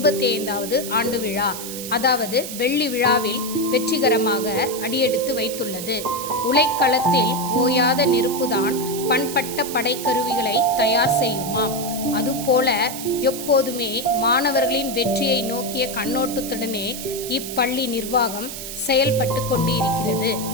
ஆண்டு விழா, அதாவது வெள்ளி விழாவில் வெற்றிகரமாக அடியெடுத்து வைத்துள்ளது. உலைக்களத்தில் ஓயாத நெருப்புதான் பண்பட்ட படைக்கருவிகளை தயார் செய்யுமாம். அதுபோல எப்போதுமே மாணவர்களின் வெற்றியை நோக்கிய கண்ணோட்டத்துடனே இப்பள்ளி நிர்வாகம் செயல்பட்டு கொண்டு இருக்கிறது.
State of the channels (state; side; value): noise; right; hiss, 8 dB below the sound